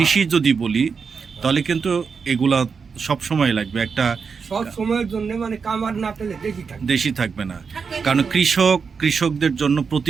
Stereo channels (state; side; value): quieter; left; 5.6 dB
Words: যদি বলি তাহলে কিন্তু এগুলা সব সময় লাগবে, একটা সব সময়ের জন্য মানে কামার না পেলে দেখি থাকে, দেশি থাকবে না। কারণ কৃষকদের জন্য